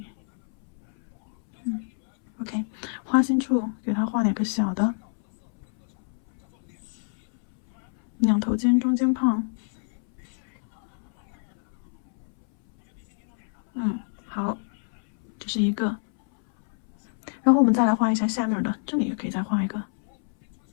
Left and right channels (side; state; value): right; silent; 61 dB below the other